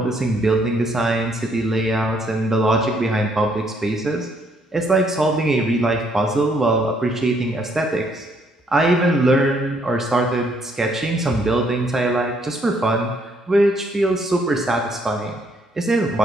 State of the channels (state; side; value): normal; both; correlation 0.69